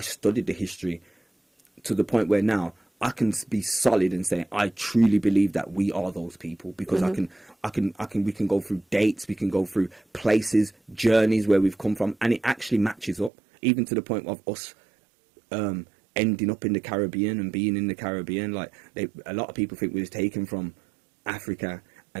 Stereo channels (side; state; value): left; drops out; at 13.3 s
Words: the history to the point where now I can be solid and say I truly believe that we are those people, because we can go through dates, we can go through places, journeys where we've come from, and it actually matches up, even to the point of us ending up in the Caribbean and being in the Caribbean. Like, a lot of people think we was taken from Africa